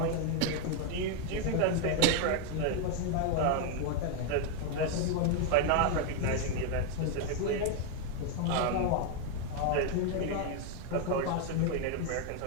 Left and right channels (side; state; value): both; different; correlation 0.00